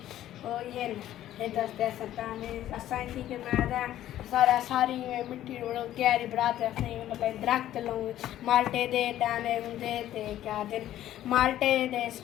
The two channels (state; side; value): quieter; right; 12.8 dB